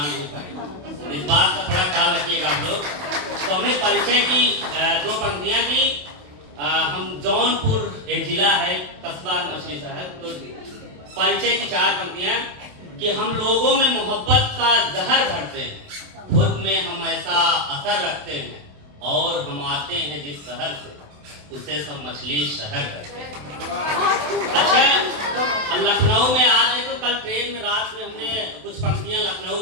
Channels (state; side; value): late; left; 27 ms